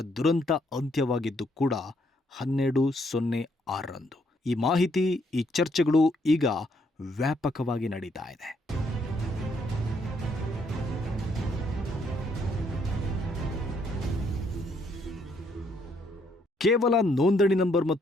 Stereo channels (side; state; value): both; normal; correlation 0.71